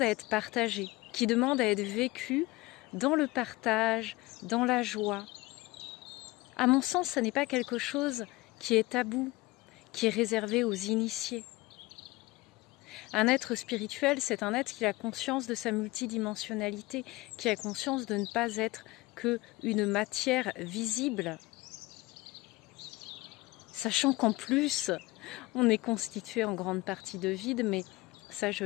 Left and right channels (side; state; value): right; quieter; 20.8 dB